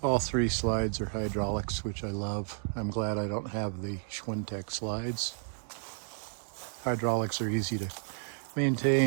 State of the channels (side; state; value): left; silent; digital silence